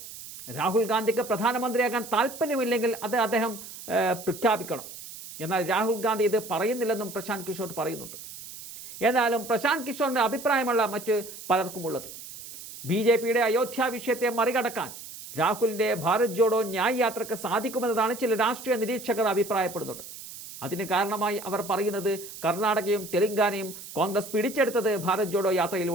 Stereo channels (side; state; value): right; noise; hiss, 13 dB below the sound